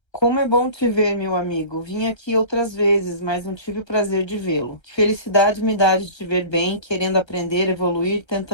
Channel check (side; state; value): right; late; 1.3 ms